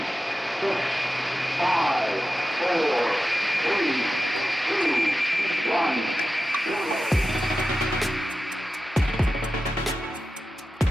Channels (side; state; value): both; normal; correlation 0.93